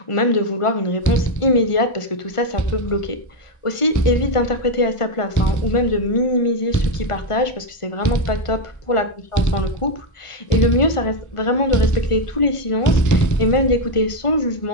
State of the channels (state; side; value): late; right; 1.5 ms